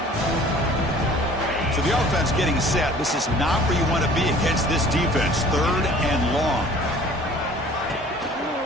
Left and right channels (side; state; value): both; normal; correlation 0.50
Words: So the offense getting set. This is not where you want to be against this defense. Third and long.